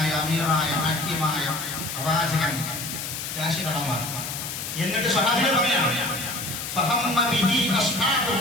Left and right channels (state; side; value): noise; left; hiss, 6 dB below the sound